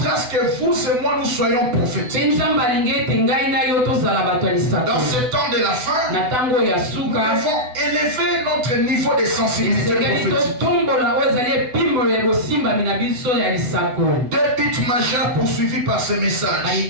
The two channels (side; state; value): left; late; 8.0 ms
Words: que vous et moi nous soyons prophétiques. Dans ce temps de la fin, nous devons élever notre niveau de sensibilité prophétique. Deux buts majeurs poursuivis par ce message.